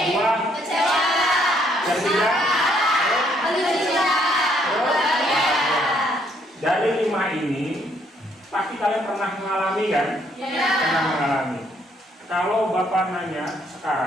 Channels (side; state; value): both; normal; correlation 0.68